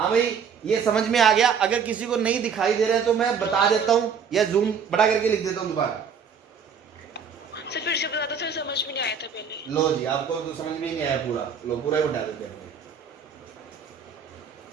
भाई ये समझ में आ गया, अगर किसी को नहीं दिखाई दे रहा है तो मैं बता देता हूं या जूम बड़ा करके लिख देता हूं दोबारा। सर फिर से बता दो सर, समझ में नहीं आया था पहले। लो जी, आपको तो समझ में ही नहीं आया पूरा, लो पूरा ही उठा देते हैं,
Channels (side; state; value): left; quieter; 6.5 dB